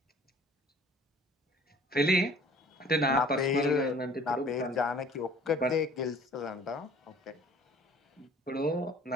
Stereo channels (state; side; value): normal; both; correlation 0.51